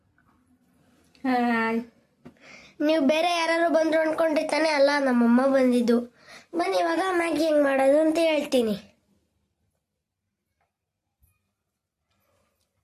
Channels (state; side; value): identical; both; correlation 1.00